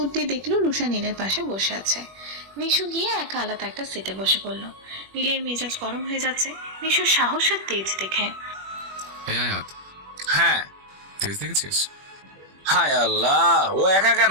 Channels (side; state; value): left; late; 21 ms